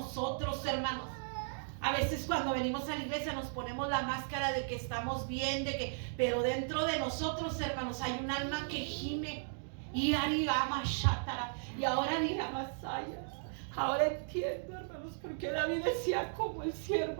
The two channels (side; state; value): left; silent; digital silence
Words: hermanos. A veces cuando venimos a la iglesia nos ponemos la máscara de que estamos bien, pero dentro de nosotros, hermanos, hay un alma que gime. Y ahora ni Masaya. Ahora entiendo, hermanos, porque David decía como el